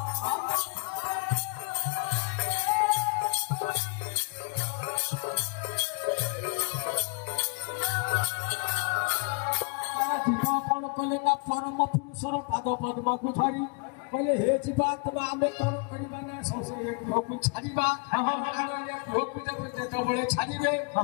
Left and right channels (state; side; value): quieter; right; 32.9 dB